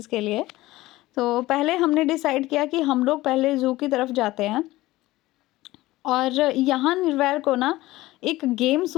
के लिए। तो पहले हमने डिसाइड किया कि हम लोग पहले ज़ू की तरफ जाते हैं। और यहाँ निर्वैर को ना एक गेम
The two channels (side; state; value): right; quieter; 17.9 dB